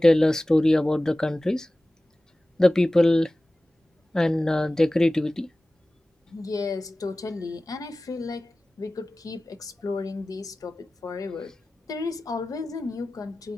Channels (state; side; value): normal; both; correlation 0.97